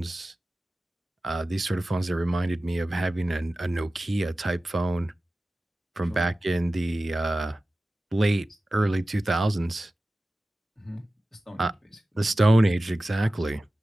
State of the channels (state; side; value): normal; both; correlation 0.96